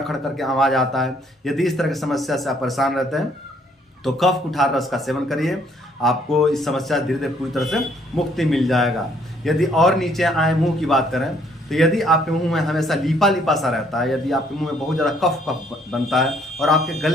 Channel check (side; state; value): both; normal; correlation 0.65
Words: खड़ करके आवाज़ आता है, यदि इस तरह की समस्या से आप परेशान रहते हैं तो कफ कुठार रस का सेवन करिए, आपको इस समस्या से धीरे धीरे पूरी तरह से मुक्ति मिल जाएगा। यदि और नीचे आए, मुंह की बात करें तो यदि आपके मुंह में हमेशा लीपा लीपा सा रहता है, यदि आपके मुंह में बहुत ज़्यादा कफ बनता है और आपके